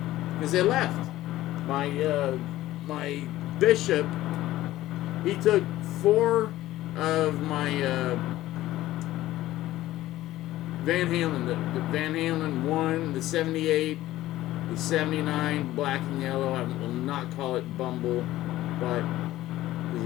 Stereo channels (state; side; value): quieter; right; 15.5 dB